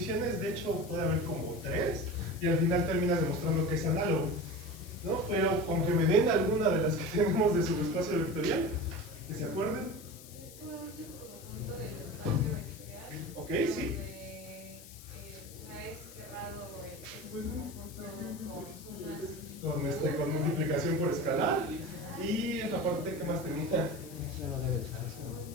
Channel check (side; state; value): left; noise; hiss, 18 dB below the sound